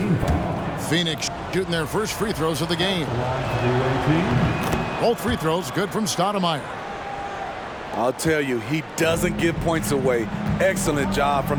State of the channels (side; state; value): both; identical; correlation 1.00